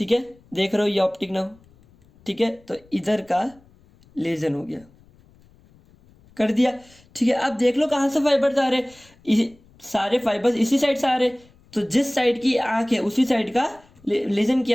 है, देख रहे हो ये ऑप्टिक नर्व, ठीक है, तो इधर का लीजन हो गया, कर दिया, ठीक है। अब देख लो कहाँ से फाइबर्स आ रहे, सारे फाइबर्स इसी साइड से आ रहे, तो जिस साइड की आंख है उसी साइड का लीजन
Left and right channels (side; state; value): left; noise; rumble, 29 dB below the sound